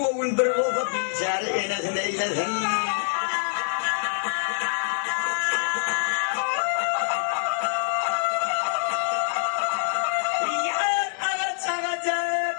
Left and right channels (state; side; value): silent; right; digital silence